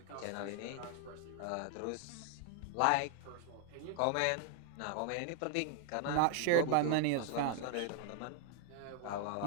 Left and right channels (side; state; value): both; different; correlation 0.00